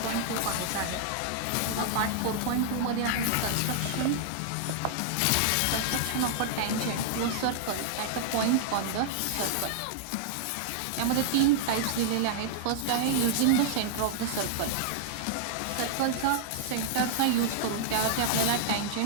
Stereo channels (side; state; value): both; different; correlation -0.01